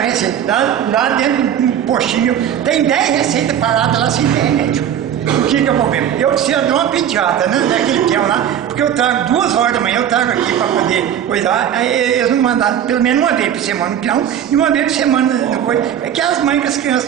receita. Lá dentro de um postinho tem 10 receitas paradas lá sem ter remédio. O que é o problema? Eu preciso de uma pediatra, né? Daquele peão lá, porque eu trago 2 horas da manhã, eu trago aqui para poder cuidar, aí eles não mandaram pelo menos uma vez por semana no peão e uma vez por semana depois. É que as mães com as crianças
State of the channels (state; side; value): quieter; left; 9.7 dB